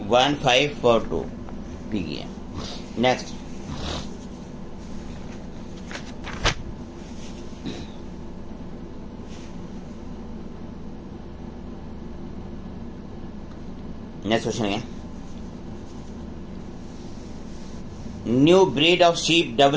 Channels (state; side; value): identical; both; correlation 1.00